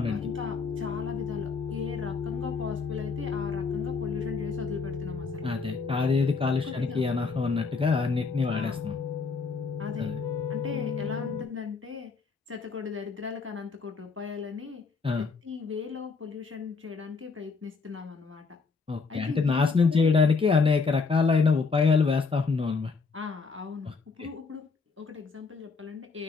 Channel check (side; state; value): right; quieter; 4.7 dB